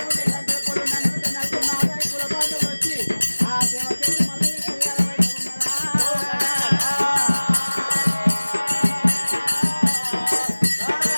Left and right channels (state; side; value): inverted; both; correlation -1.00